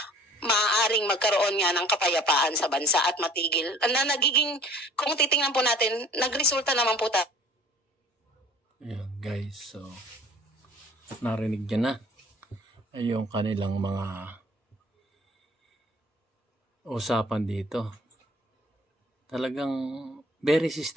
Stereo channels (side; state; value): both; normal; correlation 0.50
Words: maaaring magkaroon nga ng kapayapaan sa bansa at matigil. Na nagiging, kung titingnan po natin, nagresulta naman po tayo. Ayan guys, so narinig niya na yung kanilang mga usapan dito. Talagang very